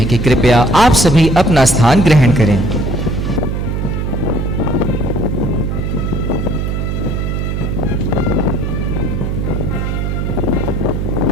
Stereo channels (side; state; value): right; noise; hum, 1 dB below the sound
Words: कि कृपया आप सभी अपना स्थान ग्रहण करें।